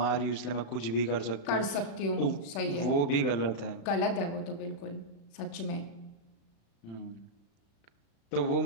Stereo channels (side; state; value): right; late; 36 ms